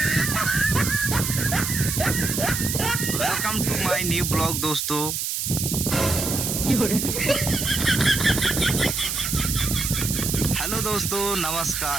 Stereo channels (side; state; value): right; noise; hiss, 2 dB below the sound